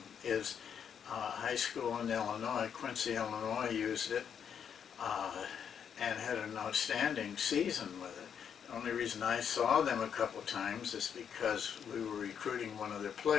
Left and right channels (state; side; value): quieter; right; 7.9 dB